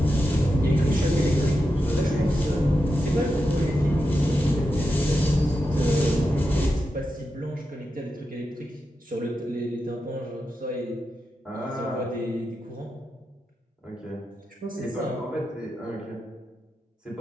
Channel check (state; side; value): normal; both; correlation 0.88